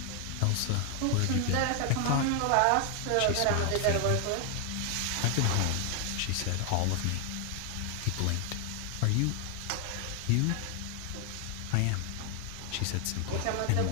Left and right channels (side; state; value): both; different; correlation 0.00